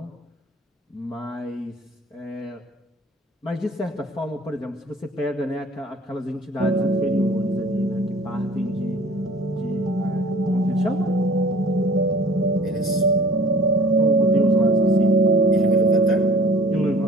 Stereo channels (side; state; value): both; normal; correlation 0.48